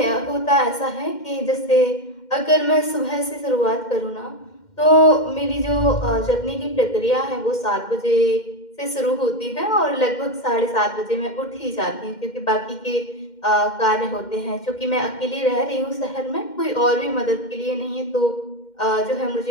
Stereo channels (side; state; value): right; late; 2.1 ms